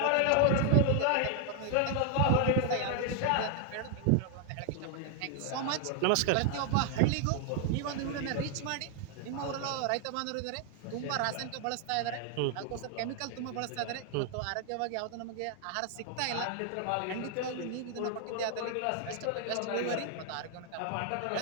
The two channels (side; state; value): both; different; correlation 0.00